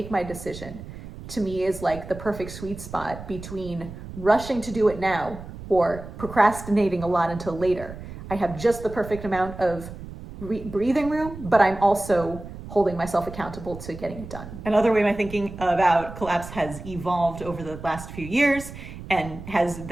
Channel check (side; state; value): right; noise; rumble, 12 dB below the sound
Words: my decision, to me is like the perfect sweet spot between rushing to do it now or procrastinating a lot until later. I have just the perfect amount of breathing room, but I'm also holding myself accountable to getting it done. Another way my thinking about collapse has evolved over the last few years and has